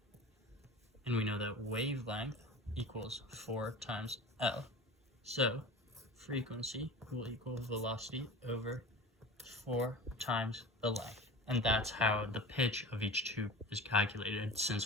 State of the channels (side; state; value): both; normal; correlation 0.35